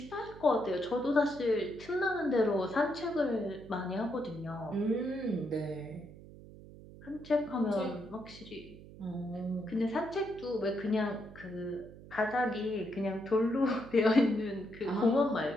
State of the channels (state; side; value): noise; right; hum, 17 dB below the sound